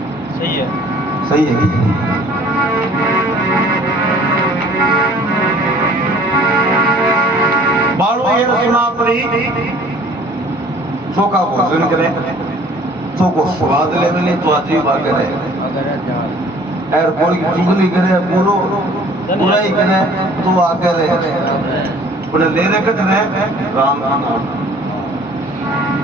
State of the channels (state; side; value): normal; both; correlation 0.53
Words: सही है, सही है। बालो ये सुना पड़ी चोका भोजन करे, चोको स्वाद ले मिले तो अच्छी बात करे, और बोल की चुगली करे, पूरो बुराई करे तो आगे रहे, उन्हें लेने कट रहे राम नाम,